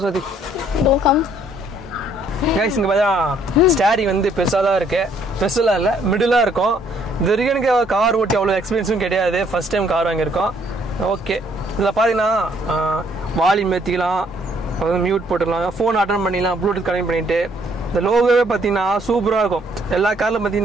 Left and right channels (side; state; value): both; normal; correlation 0.65